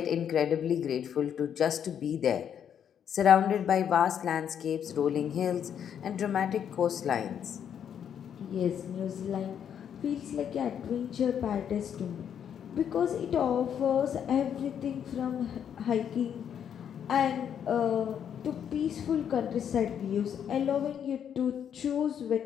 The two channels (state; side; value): quieter; right; 8.7 dB